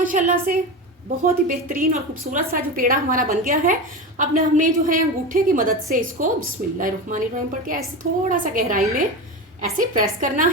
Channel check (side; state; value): both; normal; correlation 0.23